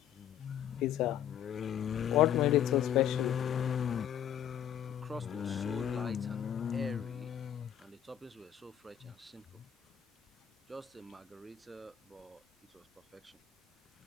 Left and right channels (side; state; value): right; quieter; 10.1 dB